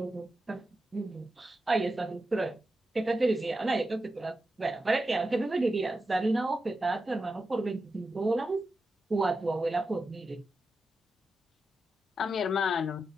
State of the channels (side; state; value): both; normal; correlation 0.90